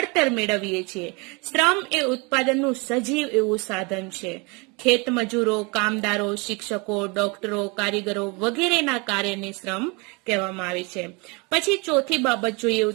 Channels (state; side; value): quieter; left; 29.2 dB